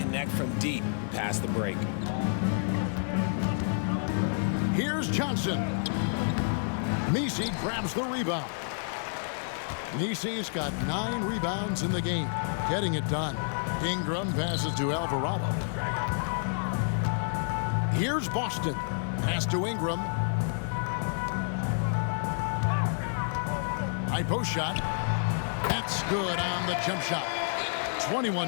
from deep past the break. Here's Johnson. Misi grabs the rebound. Misi's got 9 rebounds in the game, getting it done. Ingram passes to Alvarado. Here's Boston. Pass to Ingram. High post shot. That's good on the jump shot.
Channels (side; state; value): right; silent; 57 dB below the other